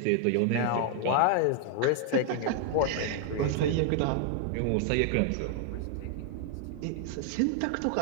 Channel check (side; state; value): both; different; correlation 0.00